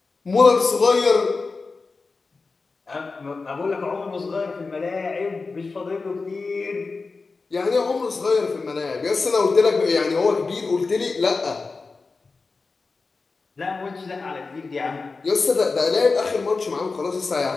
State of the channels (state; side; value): quieter; right; 4.1 dB